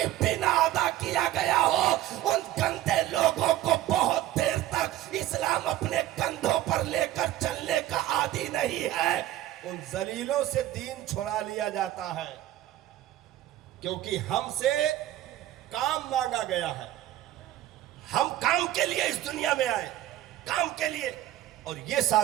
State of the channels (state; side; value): quieter; left; 13.7 dB